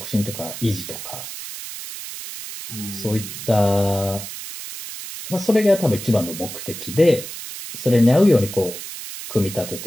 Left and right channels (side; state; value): right; noise; hiss, 10 dB below the sound